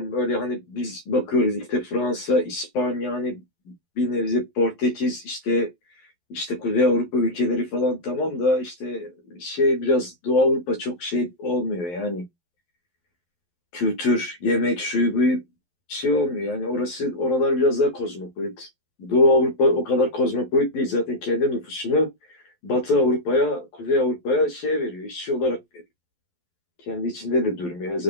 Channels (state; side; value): late; right; 11 ms